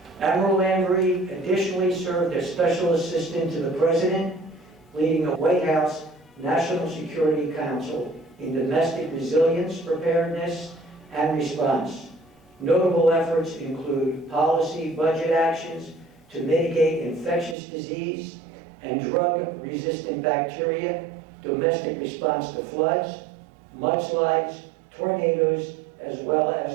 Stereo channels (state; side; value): drops out; left; at 17.6 s